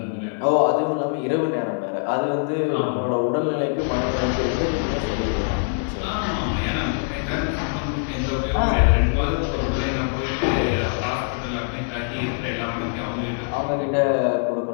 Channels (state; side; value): silent; right; 63 dB below the other